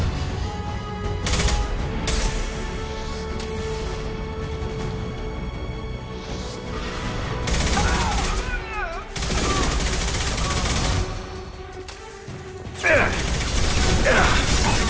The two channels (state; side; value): identical; both; correlation 1.00